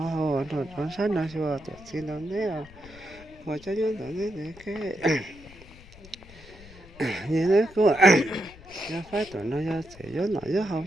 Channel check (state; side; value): noise; left; rumble, 20 dB below the sound